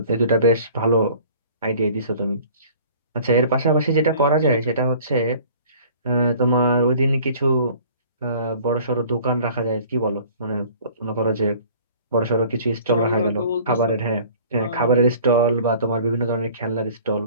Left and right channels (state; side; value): inverted; both; correlation -0.50